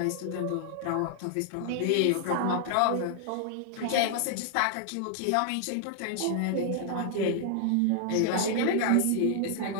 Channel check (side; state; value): both; different; correlation 0.00